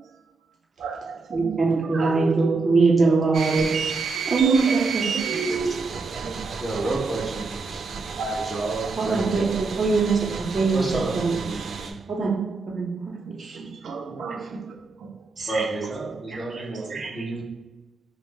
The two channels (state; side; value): quieter; left; 3.9 dB